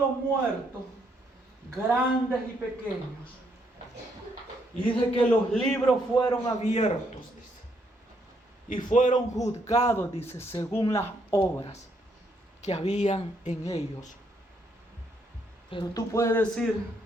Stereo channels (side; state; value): both; normal; correlation 0.73